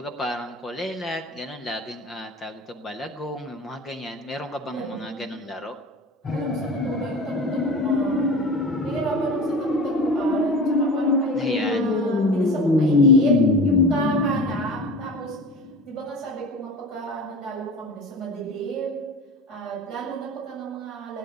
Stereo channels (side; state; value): both; normal; correlation 0.36